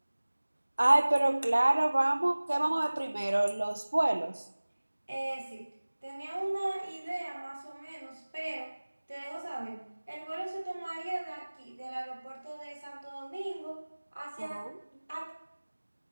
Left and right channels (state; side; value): inverted; both; correlation -1.00